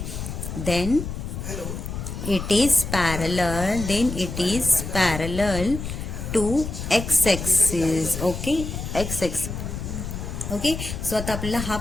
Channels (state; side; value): noise; left; rumble, 6 dB below the sound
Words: then it is parallel to x axis. Okay, x x. Okay, so आता आपल्याला हा